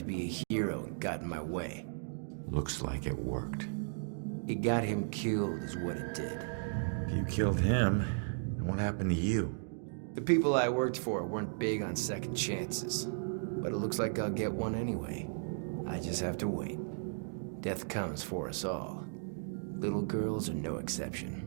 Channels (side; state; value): left; silent; digital silence